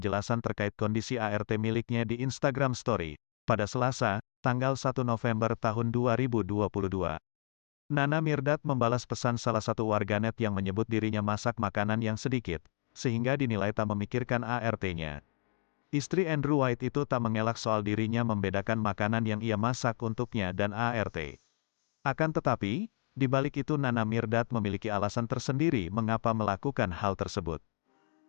terkait kondisi ART miliknya di Instagram Story, pada Selasa, tanggal 1 November tahun 2022. Nana Mirdad membalas pesan salah satu warganet yang menyebut dirinya masak makanan yang sedikit, sehingga dinilai tak memikirkan ART-nya. Istri Andrew White itu tak mengelak soal dirinya membedakan makanan yang ia masak untuknya dan ART. Akan tetapi, di balik itu Nana Mirdad memiliki alasan tersendiri mengapa melakukan hal tersebut.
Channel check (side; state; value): right; silent; 56 dB below the other